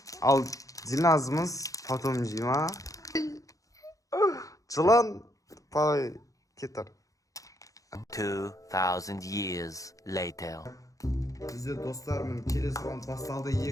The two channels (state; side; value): late; right; 0.16 ms